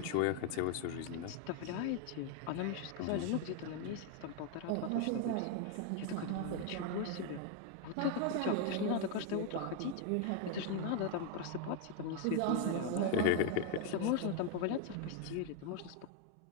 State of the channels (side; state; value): both; different; correlation 0.01